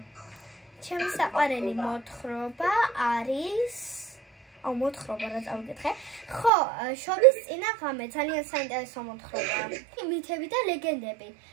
მოთხრობა არის მოთხრობა რა წავიკითხე. ხო, შობის წინა ღამე ძალიან საინტერესო მოთხრობაა. მითები და ლეგენდები.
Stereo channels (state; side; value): drops out; left; at 6.5 s